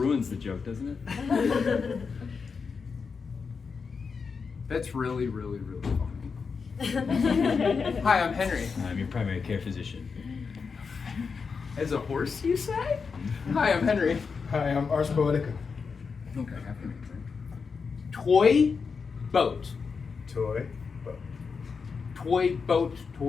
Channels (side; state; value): right; quieter; 5.3 dB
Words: the joke, doesn't it? That's really, really, really funny. Hi, I'm Henry. I'm your primary care physician. As a horse, you say? Hi, I'm Henry. Hi, I'm Ars Poetica. Okay, toy boat. Toy, boat. Toy boat,